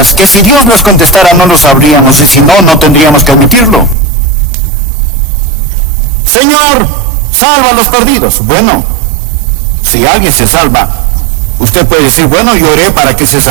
que si Dios nos contestara no lo sabríamos y si no, no tendríamos que admitirlo? Señor, salva a los perdidos. Bueno, si alguien se salva, usted puede decir, bueno, yo oré para que se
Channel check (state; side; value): drops out; left; at 4.0 s